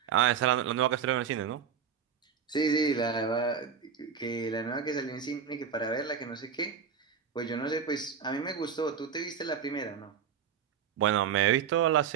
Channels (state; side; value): quieter; left; 7.1 dB